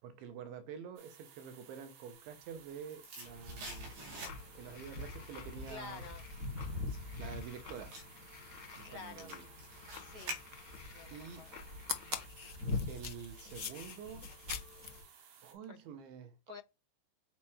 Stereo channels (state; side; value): late; left; 13 ms